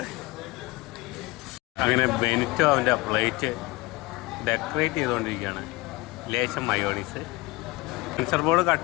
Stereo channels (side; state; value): right; quieter; 22.1 dB